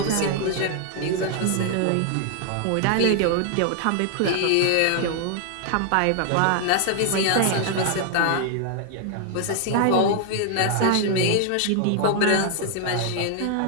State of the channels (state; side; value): different; both; correlation 0.00